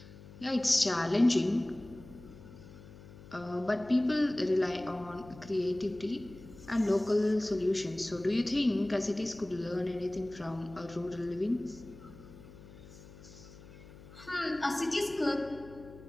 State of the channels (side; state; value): left; noise; hum, 18 dB below the sound